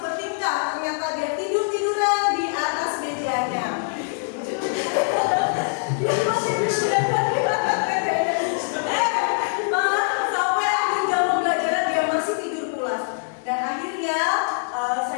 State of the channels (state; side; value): silent; right; digital silence